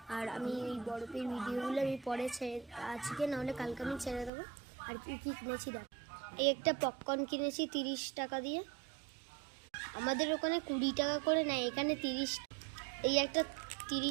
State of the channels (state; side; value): drops out; left; at 4.3 s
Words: আর আমি এই বরফের ভিডিওগুলো আমি পরে আজকে নাহলে কালকে আমি ছেড়ে দেবো। আর কি কী কিনেছি দেখ, এই একটা পপকর্ন কিনেছি 30 টাকা দিয়ে। আমাদের ওখানে 20 টাকা করে নেয়, এখানে 30। এই একটা